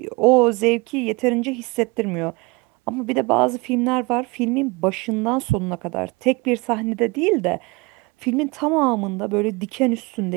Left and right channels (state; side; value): quieter; left; 26.2 dB